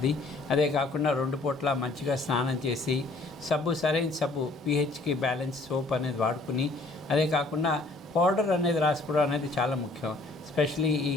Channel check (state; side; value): quieter; right; 3.1 dB